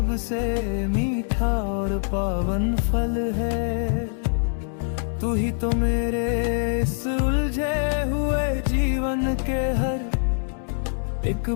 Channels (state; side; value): silent; right; 62 dB below the other